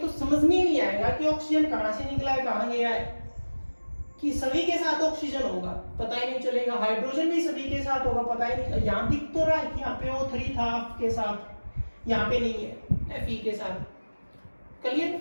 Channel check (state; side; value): inverted; both; correlation -1.00